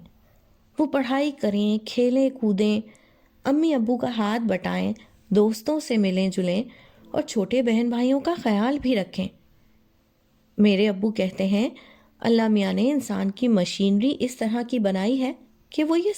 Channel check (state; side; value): identical; both; correlation 1.00